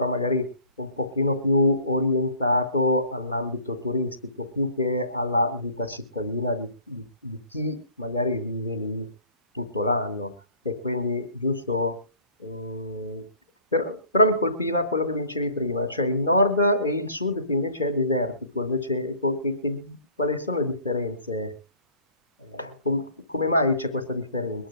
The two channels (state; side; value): inverted; both; correlation -0.53